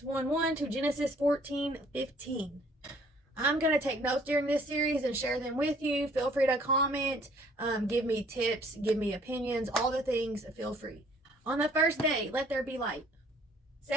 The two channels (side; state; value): both; normal; correlation 0.59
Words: 1:1 to Genesis 14:15. I'm going to take notes during this series and share them with you. Feel free to comment, give me tips, give me opinions, all the things, feel free. On the first day, let there be light.